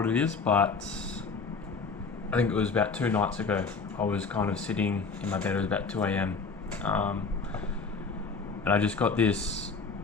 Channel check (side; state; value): right; quieter; 4.6 dB